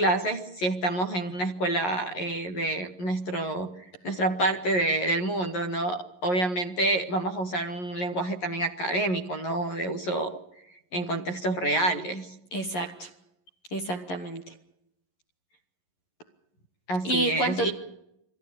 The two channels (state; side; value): late; right; 11 ms